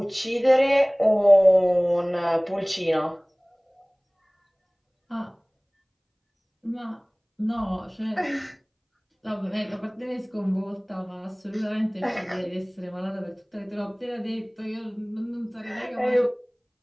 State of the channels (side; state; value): both; identical; correlation 1.00